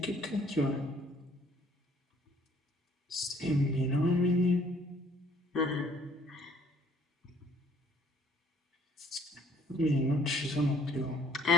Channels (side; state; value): both; normal; correlation 0.60